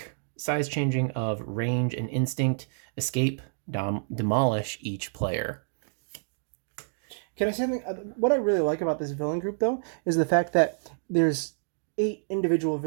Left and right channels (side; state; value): left; silent; digital silence